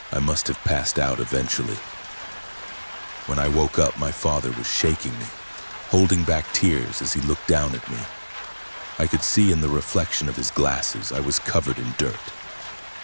I must have passed out eventually. When I woke up, my father was shaking me, holding back tears as he looked down at me. I could see in the reflection of his glasses I was covered in dirt.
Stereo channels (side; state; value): both; inverted; correlation -1.00